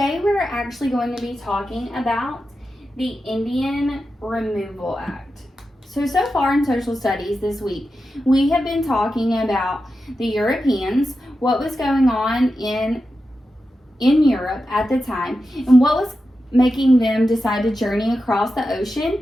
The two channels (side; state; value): both; normal; correlation 0.90